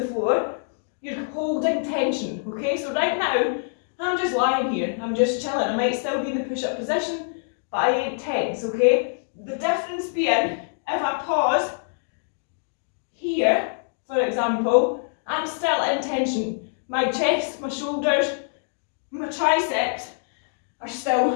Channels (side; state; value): right; silent; digital silence